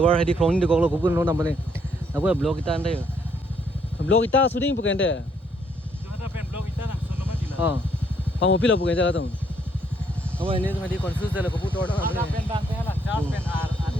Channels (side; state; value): both; normal; correlation 0.70